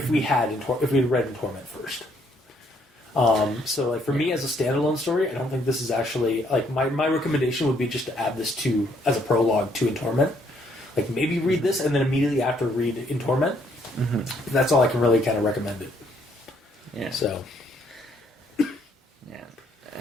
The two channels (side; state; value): both; normal; correlation 0.68